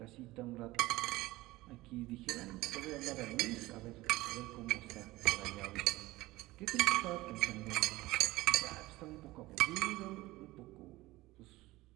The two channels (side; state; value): left; quieter; 18.9 dB